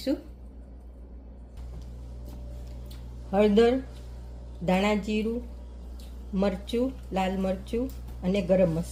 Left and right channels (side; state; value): both; identical; correlation 1.00